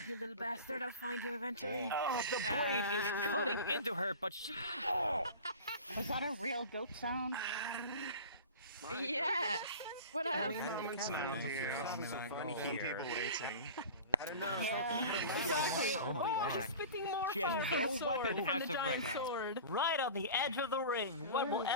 you little bastard. I'll find you eventually. Oh, the blade is cutting into her, but she... Oh! Was that a real goat sound? Yes. What else? She's spitting more She has fire no sword weapon from as the of right giant now. sword. Right on the edge of the ring. What will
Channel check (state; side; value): inverted; both; correlation -0.36